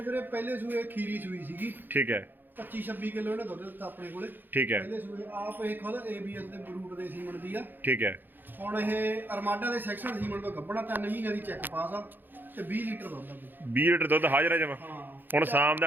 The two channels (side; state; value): left; late; 0.092 ms